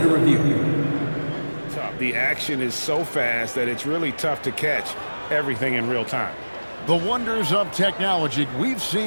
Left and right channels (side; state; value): both; inverted; correlation -1.00